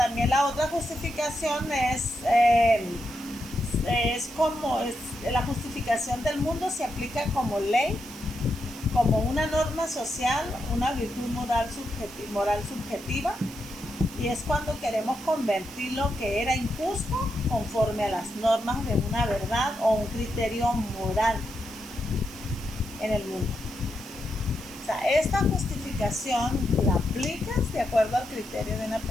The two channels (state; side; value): noise; right; hiss, 17 dB below the sound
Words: la otra justificación es la justificación del mundo se aplica como ley, como una norma social, una virtud moral subjetiva, y es cuando queremos convertir lo que era injusto conforme a las normas de una verdad o un criterio moral en el mundo. O sea, esta justificación la aplicas de acuerdo al criterio de una